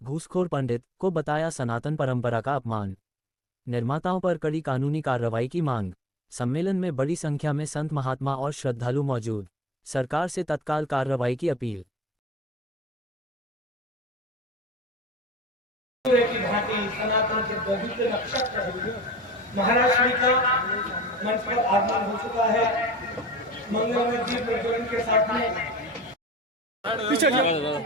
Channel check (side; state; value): both; normal; correlation 0.45